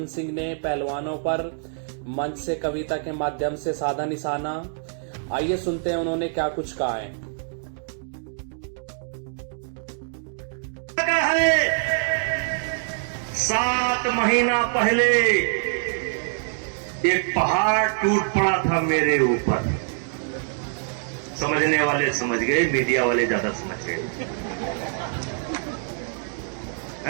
सिंह ने पहलवानों पर मंच से कविता के माध्यम से साधा निशाना। आइए सुनते हैं उन्होंने क्या कुछ कहा है। 7 महीना पहले एक पहाड़ टूट पड़ा था मेरे ऊपर। समझने वाले समझ गए, मीडिया वाले ज्यादा समझ गए।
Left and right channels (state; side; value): silent; left; 62 dB below the other